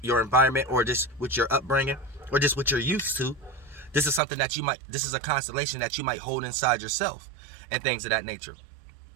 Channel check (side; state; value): left; drops out; at 4.2 s